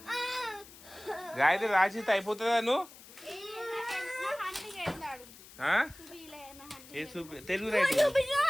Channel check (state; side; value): noise; left; hiss, 20 dB below the sound